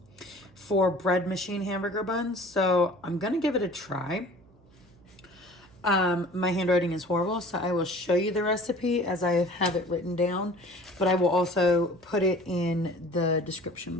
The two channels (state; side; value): noise; right; hum, 29 dB below the sound